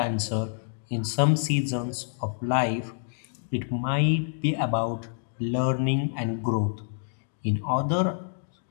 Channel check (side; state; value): right; silent; digital silence